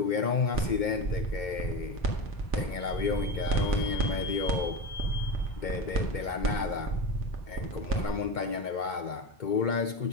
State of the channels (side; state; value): right; late; 2.2 ms